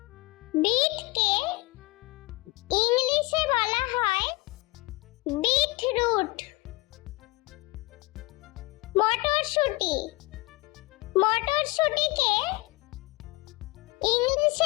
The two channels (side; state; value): right; quieter; 22.4 dB